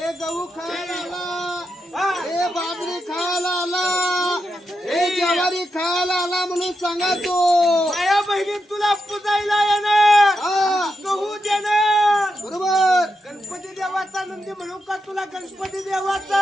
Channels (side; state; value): both; normal; correlation 0.86